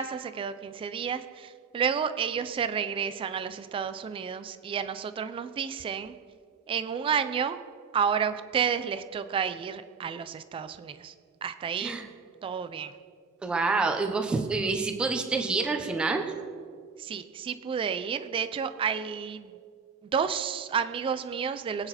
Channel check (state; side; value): quieter; left; 5.7 dB